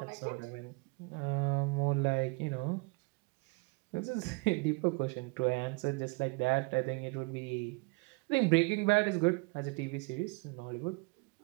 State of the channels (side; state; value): left; quieter; 28.3 dB